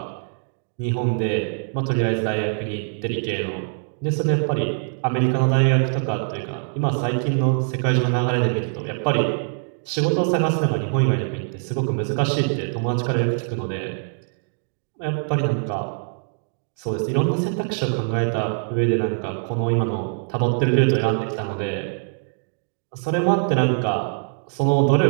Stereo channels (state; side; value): silent; left; digital silence